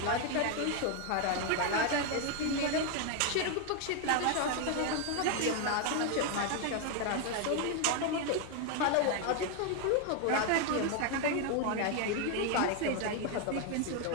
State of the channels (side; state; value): both; different; correlation 0.01